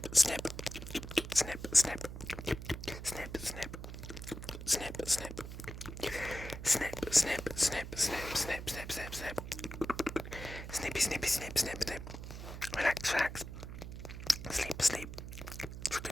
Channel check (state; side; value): noise; right; hum, 9 dB below the sound